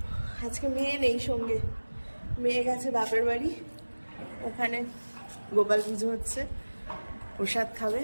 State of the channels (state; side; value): inverted; both; correlation -1.00